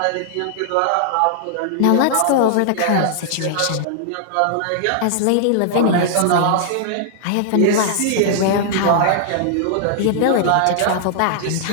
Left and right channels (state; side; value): different; both; correlation -0.01